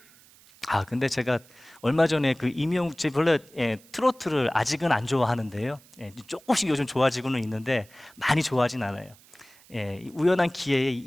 근데 제가 얼마 전에 그 임영웅, 제 원래 트로트를 아직은 안 좋아하는데요. 조금씩 요즘 좋아지고는 있는데 많이 좋아하진 않아요. 우연한 기회에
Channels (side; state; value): right; noise; hiss, 26 dB below the sound